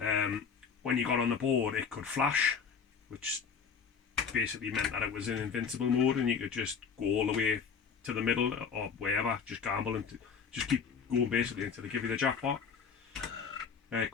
when you got on the board it could flash, which basically meant that it was in invincible mode and you could just go all the way to the middle or wherever, just gamble and just keep going basically until they give you the jackpot. It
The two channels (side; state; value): right; quieter; 6.3 dB